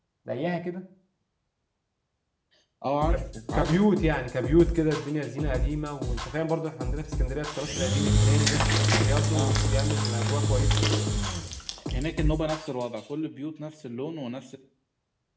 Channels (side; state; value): both; identical; correlation 1.00